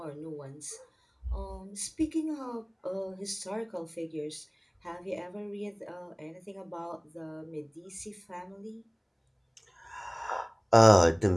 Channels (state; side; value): identical; both; correlation 1.00